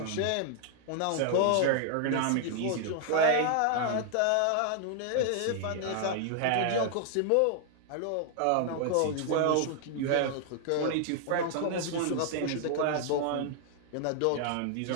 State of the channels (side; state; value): both; different; correlation 0.00